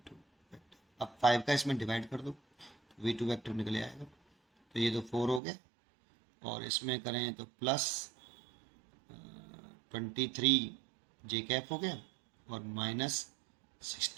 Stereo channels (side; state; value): left; drops out; at 5.4 s